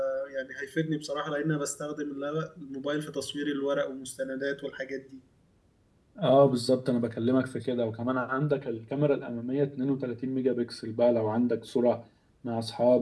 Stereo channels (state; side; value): identical; both; correlation 1.00